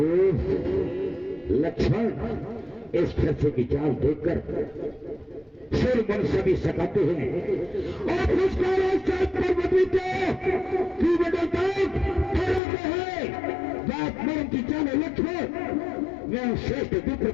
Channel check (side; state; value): right; drops out; at 12.6 s